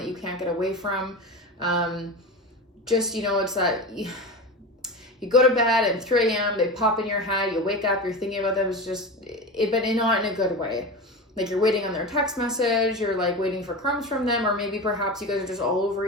you can't get away from. It's that you go to bed at 3 a.m., they pop in your head, you wake up, you're thinking about them. It's just, but not in a good way. Like you're waiting on their text message, you're like waiting for crumbs from them, or maybe perhaps you guys are just all over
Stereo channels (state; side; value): normal; both; correlation 0.26